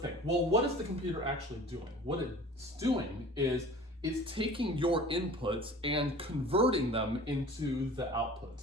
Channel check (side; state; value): both; normal; correlation 0.43